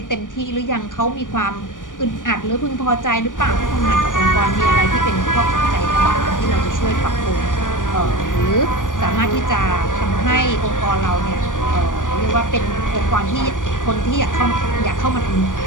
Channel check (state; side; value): late; right; 0.88 ms